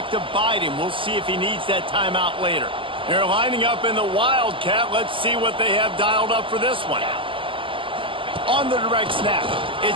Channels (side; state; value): left; late; 0.25 ms